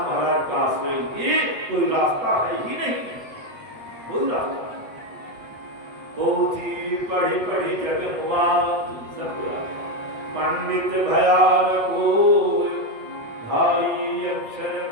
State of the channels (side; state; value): left; late; 8.1 ms